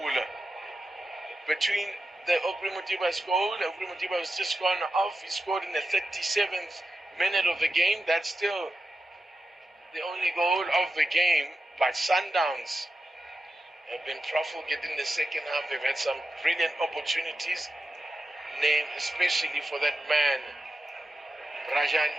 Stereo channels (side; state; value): both; normal; correlation 0.90